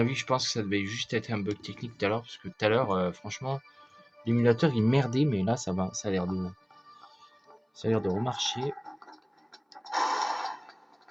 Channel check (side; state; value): both; identical; correlation 1.00